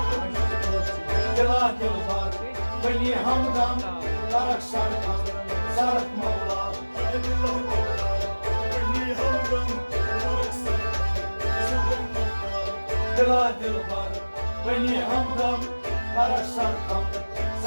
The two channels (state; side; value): inverted; both; correlation -1.00